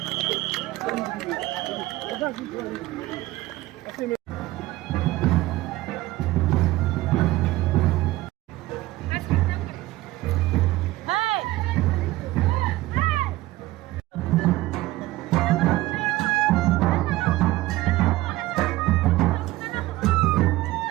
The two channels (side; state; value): left; quieter; 17.7 dB